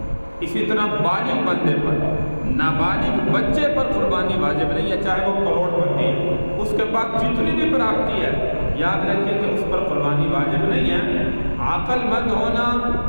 اسی طرح بالغ بندے پر، نابالغ بچے پر قربانی واجب نہیں ہے، چاہے وہ کروڑ پتی ہے، اس کے پاس جتنی بھی پراپتی ہے، یاد رکھیں کہ اس پر قربانی واجب نہیں ہے۔ عقل مند ہونا،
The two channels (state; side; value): inverted; both; correlation -1.00